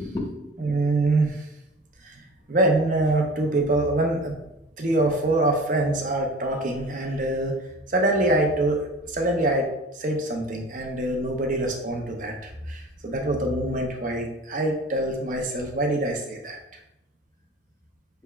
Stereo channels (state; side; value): normal; both; correlation 0.40